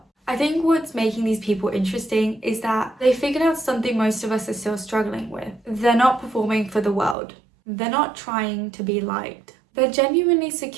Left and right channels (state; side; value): drops out; left; at 7.2 s